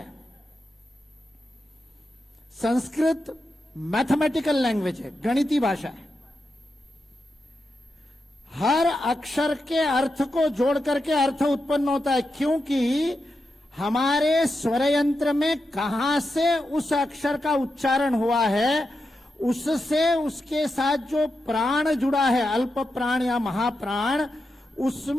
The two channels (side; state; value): both; normal; correlation 0.88